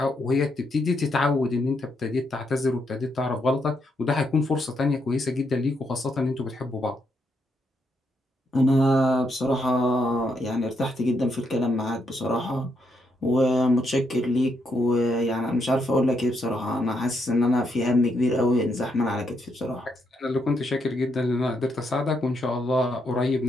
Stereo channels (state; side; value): normal; both; correlation 0.77